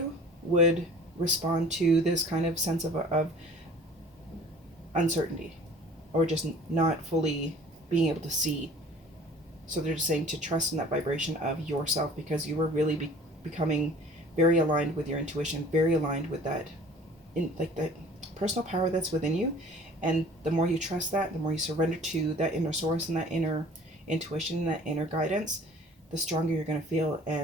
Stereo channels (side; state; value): both; normal; correlation 0.48